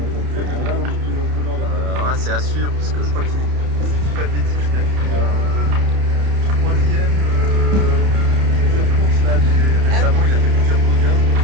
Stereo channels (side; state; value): left; late; 30 ms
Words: C'est à suivre parce que je crois qu'il fait pas de bêtises. Troisième plusieurs courses là. Récemment, il a fait plusieurs podiums.